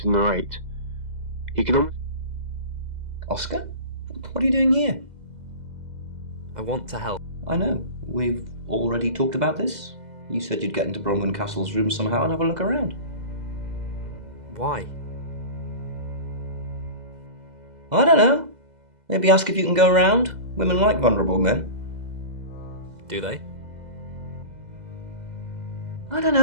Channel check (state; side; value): late; left; 2.0 ms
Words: narrate. He could almost... Oscar? What are you doing here? I want to help. I know. We've already talked about this. You said you'd get into Bronwyn Castle's room somehow and have a look around. Why? I don't know. Maybe ask if you can go around. Women like vulnerable men. Do they? I don't